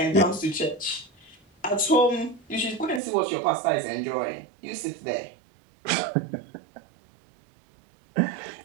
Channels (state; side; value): drops out; left; at 3.0 s